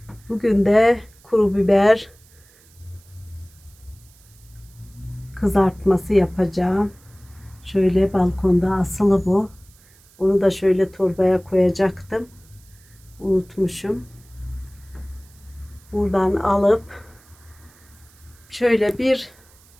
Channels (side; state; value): right; noise; hiss, 28 dB below the sound